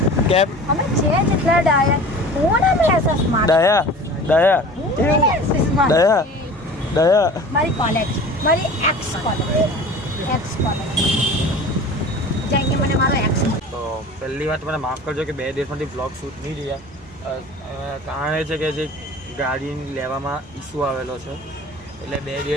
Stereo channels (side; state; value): both; normal; correlation 0.41